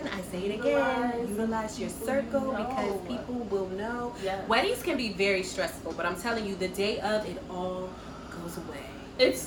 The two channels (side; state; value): both; identical; correlation 1.00